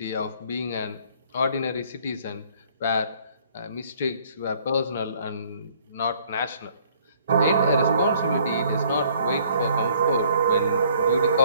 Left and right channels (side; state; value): both; inverted; correlation -0.60